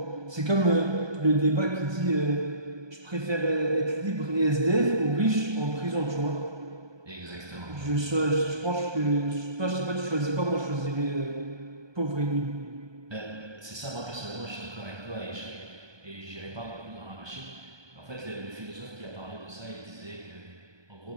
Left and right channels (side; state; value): left; late; 1.2 ms